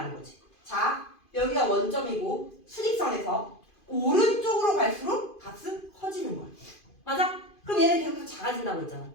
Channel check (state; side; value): late; right; 2.5 ms